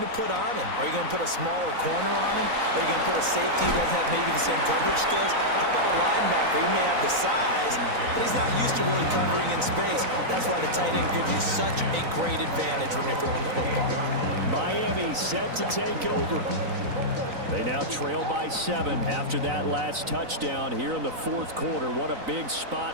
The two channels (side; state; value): left; late; 3.9 ms